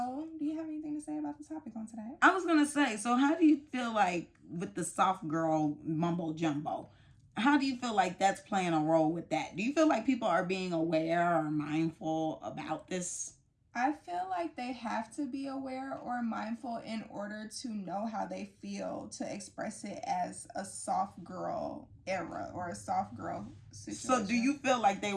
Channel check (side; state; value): both; identical; correlation 1.00